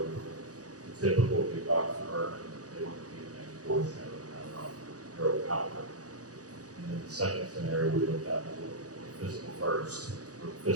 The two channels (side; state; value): left; late; 0.67 ms